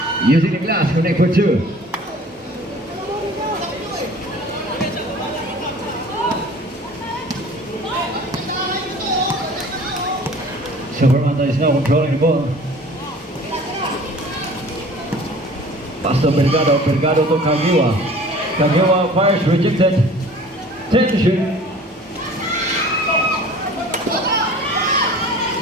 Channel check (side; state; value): both; normal; correlation 0.46